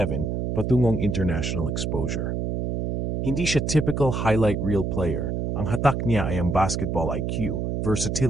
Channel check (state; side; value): noise; right; hum, 2 dB below the sound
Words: patungong international exposure. Hindi siya typical highlight reel player. Ang hatak niya ay ang basketball IQ,